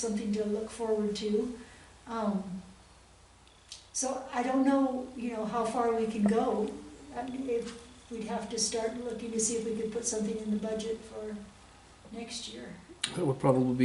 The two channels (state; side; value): identical; both; correlation 1.00